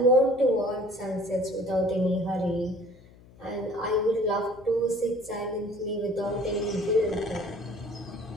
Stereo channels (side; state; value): left; noise; hum, 24 dB below the sound